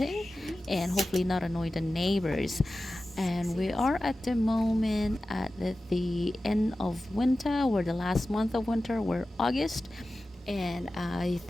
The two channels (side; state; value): both; normal; correlation 0.94